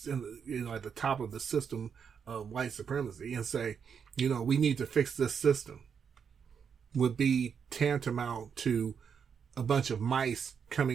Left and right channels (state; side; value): quieter; left; 6.9 dB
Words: top of the system of white supremacy and say, we need to fix this system. would be tantamount to a bunch of mice